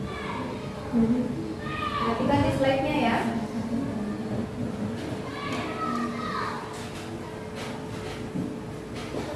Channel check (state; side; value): identical; both; correlation 1.00